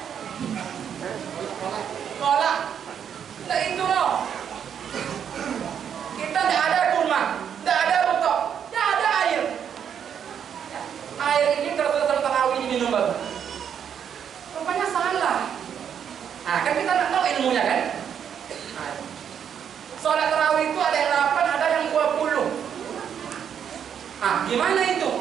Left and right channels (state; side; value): quieter; left; 8.3 dB